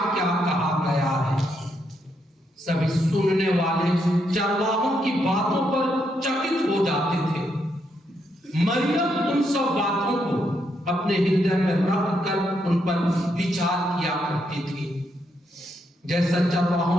क्या कहा गया है। सभी सुनने वाले चरवाहों की बातों पर चकित हो जाते थे। मरियम उन सब बातों को अपने हृदय में रख कर उन पर विचार किया करती थी। जैसा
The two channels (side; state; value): both; normal; correlation 0.78